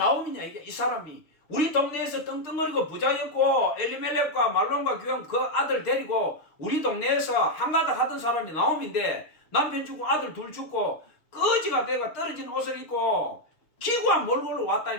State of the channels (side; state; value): right; late; 6.5 ms